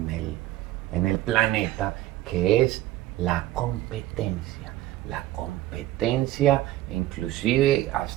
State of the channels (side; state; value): left; quieter; 15.0 dB